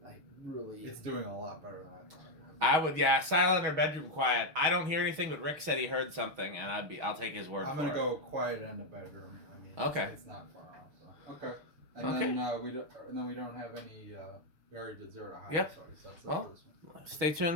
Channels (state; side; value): late; left; 6.3 ms